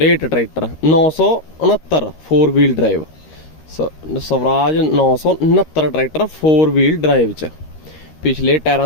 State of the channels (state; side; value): late; right; 13 ms